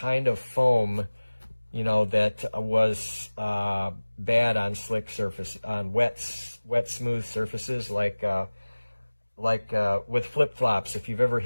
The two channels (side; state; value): both; inverted; correlation -1.00